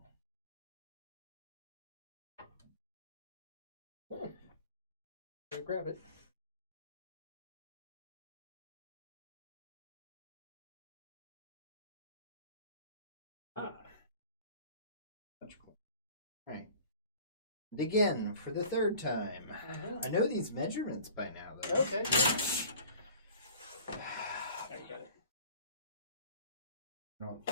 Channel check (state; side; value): inverted; both; correlation -0.46